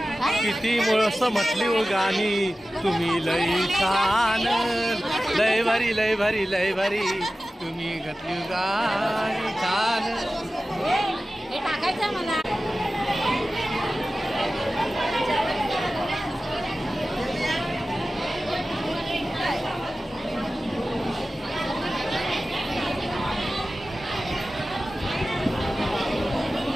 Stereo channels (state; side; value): normal; both; correlation 0.95